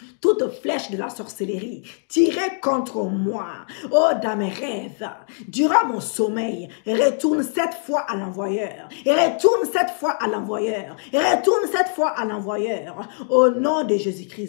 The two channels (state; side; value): silent; right; 58 dB below the other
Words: Toute flèche de la sorcellerie tirée contre moi, oh, dans mes rêves, durant mon sommeil, retourne 7 fois à l'envoyeur, et retourne 7 fois à l'envoyeur, et retourne 7 fois à l'envoyeur, au nom de